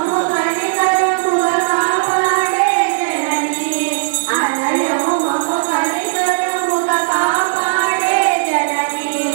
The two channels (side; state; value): left; silent; digital silence